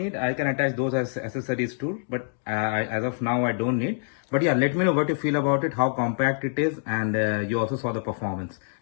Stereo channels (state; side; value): silent; right; digital silence